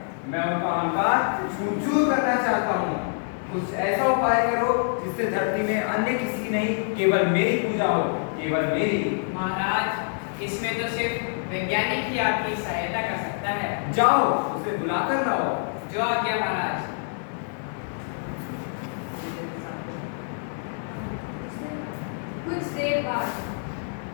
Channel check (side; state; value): right; silent; 61 dB below the other